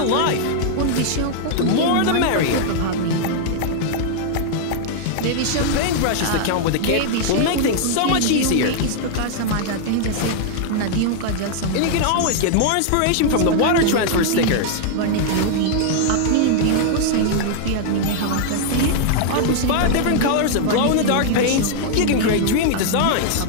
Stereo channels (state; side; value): different; both; correlation -0.01